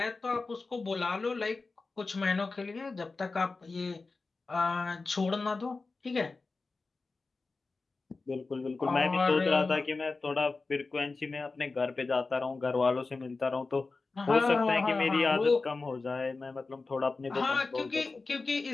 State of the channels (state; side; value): quieter; right; 3.9 dB